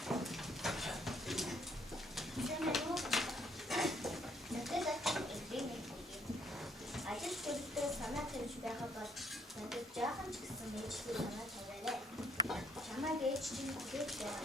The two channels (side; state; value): both; normal; correlation 0.66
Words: Сайн байна уу? Ажил төрөлтөө санаа тавьж байгаа бол надад жаахан ч гэсэн ээжтэй санаа тавиарай. Чамайг ээж чинь хүлээж